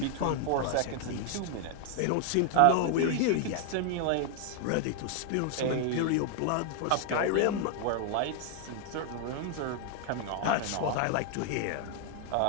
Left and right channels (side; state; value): both; different; correlation 0.00